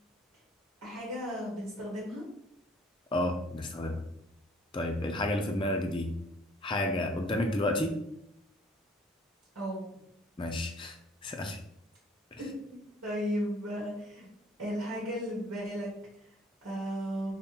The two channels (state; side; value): normal; both; correlation 0.57